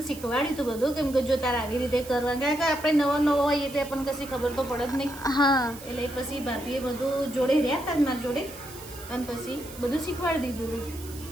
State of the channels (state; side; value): noise; right; hiss, 16 dB below the sound